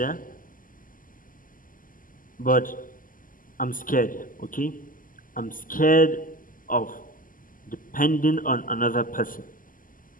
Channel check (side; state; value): right; late; 0.40 ms